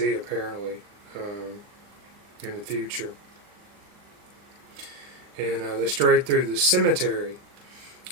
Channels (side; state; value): left; late; 39 ms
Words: apparently in the future. And they strayed through the cemetery,